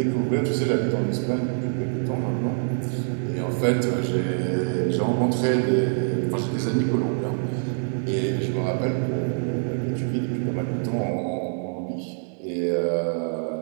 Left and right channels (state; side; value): silent; left; 60 dB below the other